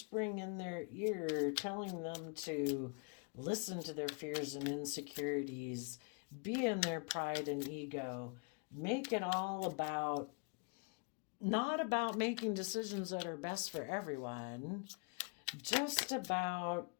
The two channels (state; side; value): quieter; right; 35.0 dB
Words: in their ear, telling them to listen to their fears and insecurities, be in their pride and ego, make it all about, not about making decisions that are best for everyone, just about